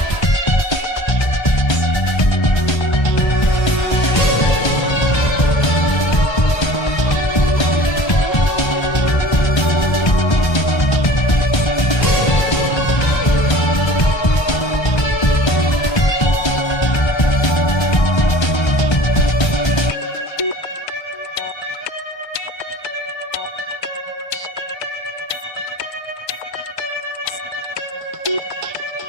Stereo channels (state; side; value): late; right; 1.3 ms